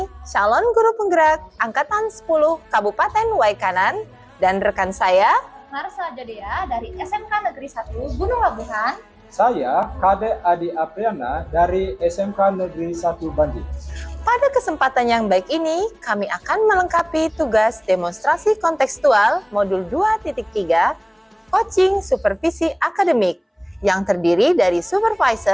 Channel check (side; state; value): both; identical; correlation 1.00